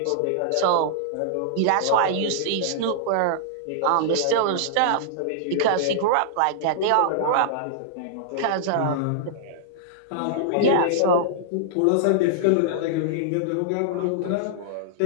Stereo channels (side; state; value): both; different; correlation -0.02